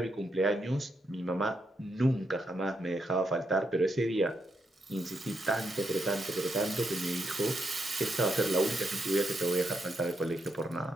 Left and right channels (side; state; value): both; normal; correlation 0.81